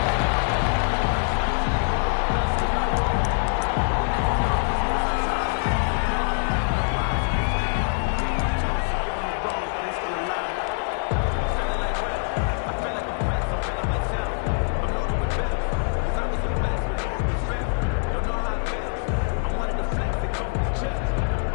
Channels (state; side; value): silent; right; 62 dB below the other